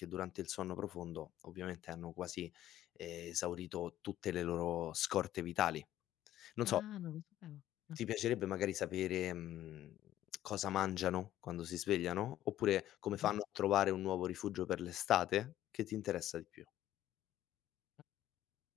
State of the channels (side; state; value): right; quieter; 13.0 dB